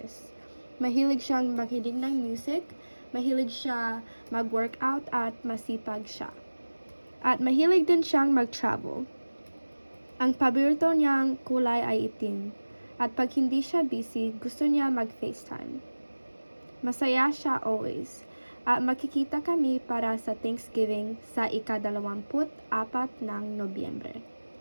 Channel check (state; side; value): inverted; both; correlation -1.00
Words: Mahilig siyang makinig ng music, mahilig siya mag-workout at masipag siya. At mahilig din siyang mag-travel. Ang paborito niyang kulay ay itim. At pag hindi siya busy, gusto niya mag-FaceTime. Masaya siya always. At makikita kami para sa Thanksgiving sa ika-24 ng Nobyembre.